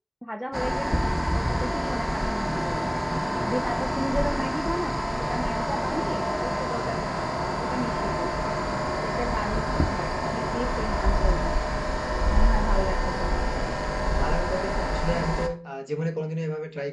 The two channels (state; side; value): identical; both; correlation 1.00